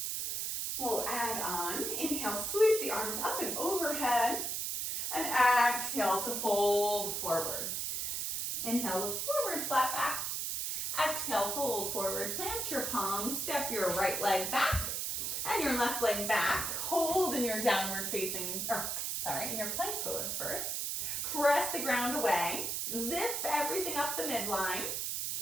We'll add on, inhale, sweep the arms up and overhead, and exhale to fold forward. Inhale, look forward, flat back. Exhale, fold forward, plant your palms, step your right leg back and your left leg back. Hold in your downward facing, in your plank pose first. Press the ground away, zip everything up the midline,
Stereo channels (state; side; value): noise; right; hiss, 1 dB below the sound